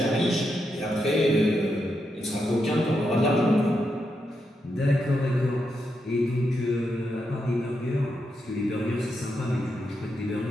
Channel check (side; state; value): both; normal; correlation 0.84